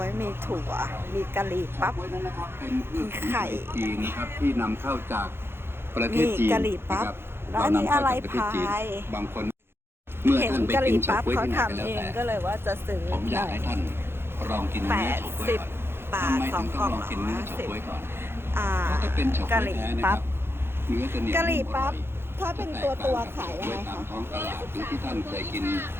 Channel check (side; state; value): left; late; 0.11 ms